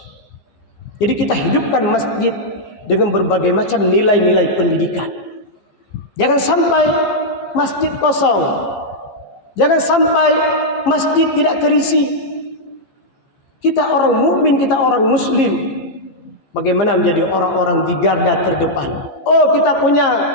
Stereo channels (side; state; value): right; late; 14 ms